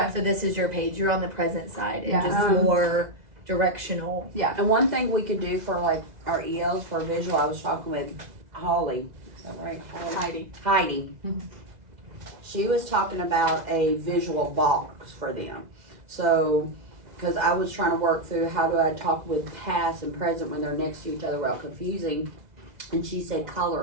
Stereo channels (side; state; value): left; late; 2.0 ms